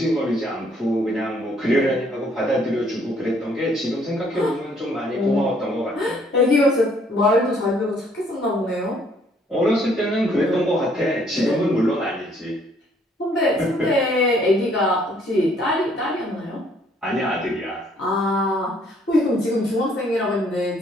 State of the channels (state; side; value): normal; both; correlation 0.64